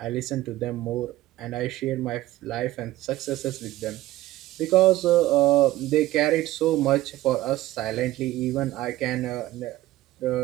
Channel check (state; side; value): quieter; left; 16.3 dB